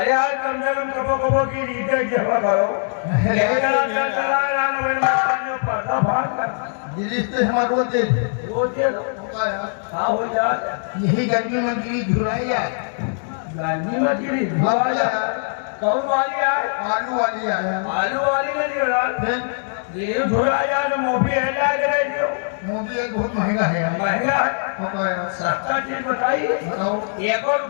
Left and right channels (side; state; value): right; silent; digital silence